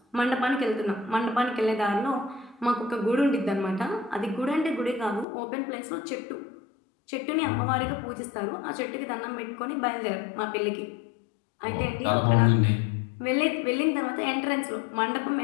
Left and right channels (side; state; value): right; drops out; at 5.2 s